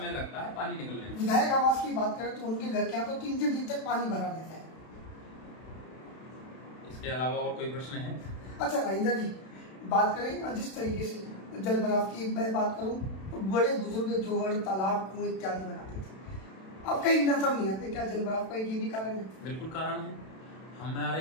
लगता है पानी निकलने में। विधायक आवास की बात करें तो उनके घर के यहाँ तो 3-3 दिन तक पानी भरा रहता है। इसके अलावा और कोई प्रश्न है? अच्छा राजेंद्र जी, बात करें जिस तरीके से जल भराव की मैं बात करूं तो बड़े बुजुर्ग जोहड़, तालाब, कुएं इत्यादि बनाते थे, अब कहीं नजर नहीं आते। क्या जल भराव का ये भी कारण है? बिल्कुल कारण है।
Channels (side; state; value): right; late; 32 ms